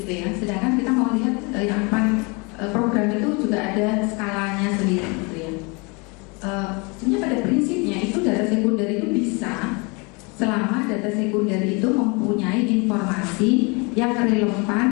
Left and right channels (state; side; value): quieter; right; 29.9 dB